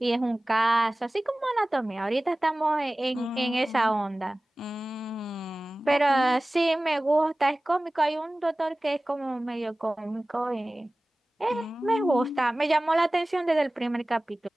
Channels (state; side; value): normal; both; correlation 0.98